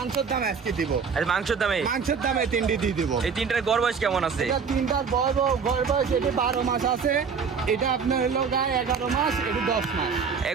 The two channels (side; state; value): left; quieter; 6.0 dB